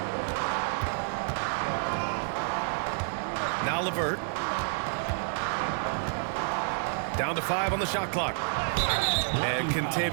Now LeVert. Down to 5 on the shot clock. And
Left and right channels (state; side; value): silent; left; digital silence